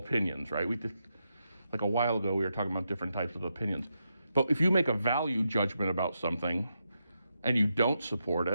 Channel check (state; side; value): inverted; both; correlation -0.85